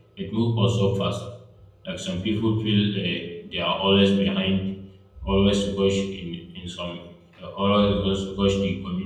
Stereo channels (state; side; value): identical; both; correlation 1.00